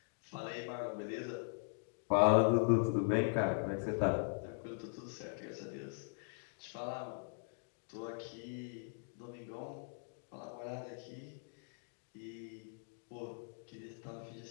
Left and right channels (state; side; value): silent; right; digital silence